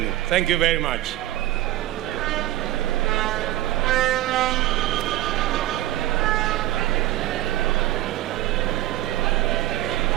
Thank you very much.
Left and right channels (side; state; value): left; quieter; 15.3 dB